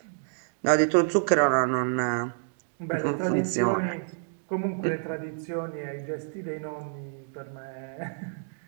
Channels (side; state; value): left; silent; digital silence